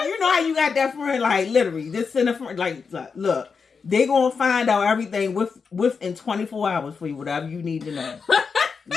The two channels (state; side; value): quieter; right; 5.4 dB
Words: how you got that friend, like literally, this in a friend, like look. They gonna find out everything within 24 hours for you, whatever you need to know.